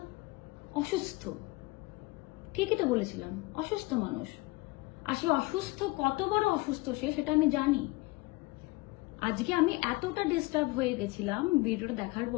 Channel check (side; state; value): right; quieter; 22.3 dB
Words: অসুস্থ। ঠিকই তো বলেছিলাম, অসুস্থ মানুষ। আর সে অসুস্থ, কত বড় অসুস্থ সে, সেটা আমি জানি। আজকে আমি এতটা ডিস্টার্ব হয়ে গেছিলাম ভিডিওটা দেখার